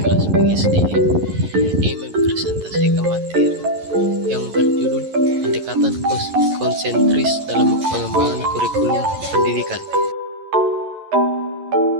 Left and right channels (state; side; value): late; left; 11 ms